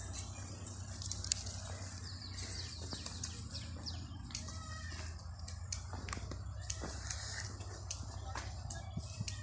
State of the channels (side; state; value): both; identical; correlation 1.00